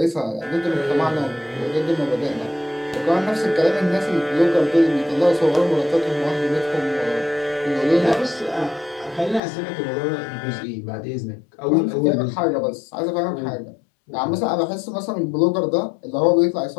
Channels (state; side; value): drops out; right; at 9.4 s